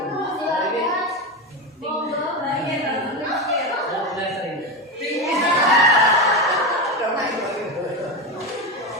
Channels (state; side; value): normal; both; correlation 0.16